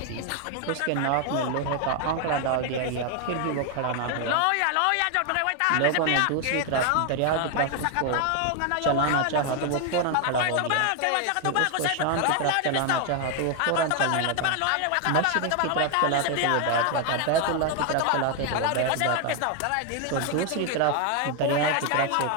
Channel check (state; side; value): different; both; correlation 0.01